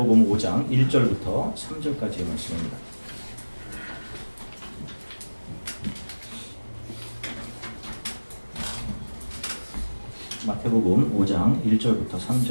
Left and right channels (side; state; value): both; inverted; correlation -1.00